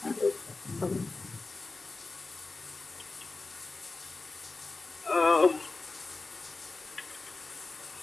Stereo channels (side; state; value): right; quieter; 3.6 dB